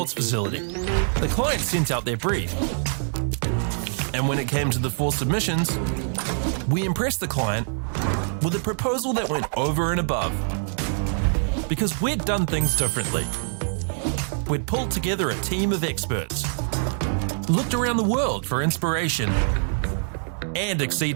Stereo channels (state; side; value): silent; left; 62 dB below the other